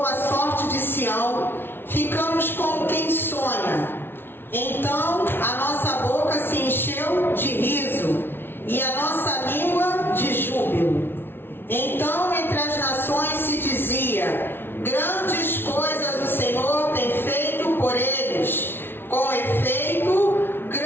a sorte de Sião, ficamos como quem sonha. Então a nossa boca se encheu de riso e a nossa língua de júbilo. Então entre as nações se dizia: grandes coisas o Senhor tem feito por eles. Com efeito,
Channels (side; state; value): right; late; 0.11 ms